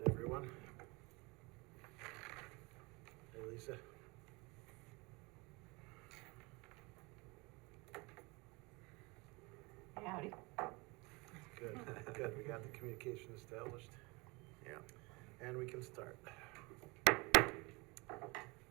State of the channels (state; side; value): quieter; left; 26.1 dB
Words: everyone. Hey, Lisa. Howdy. Good, good. We got the communication established. Yeah. And we can start.